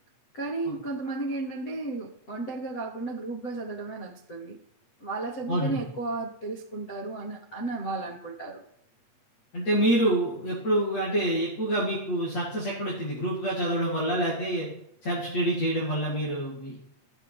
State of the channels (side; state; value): right; late; 8.4 ms